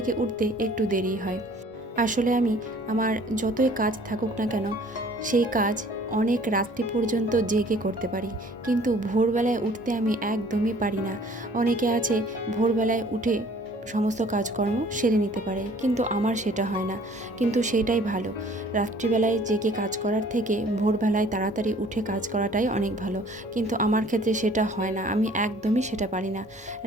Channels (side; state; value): both; normal; correlation 0.53